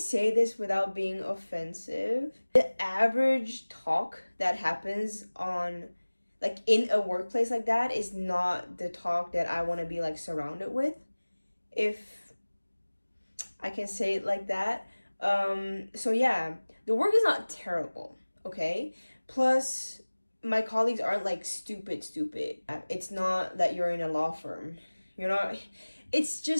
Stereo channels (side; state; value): both; inverted; correlation -1.00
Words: this without being offensive? The average talk that happens on, like, in a workplace like that is not the talk that I want to be, like, surrounded with, if I can say it like that. So yeah, the work is not terrible, okay? Plus, my colleagues aren't, like, stupid. It's not that you're in a law firm. You're not, It's